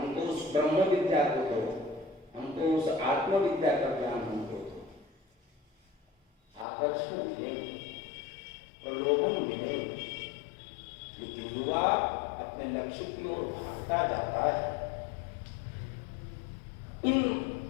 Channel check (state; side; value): drops out; right; at 6.7 s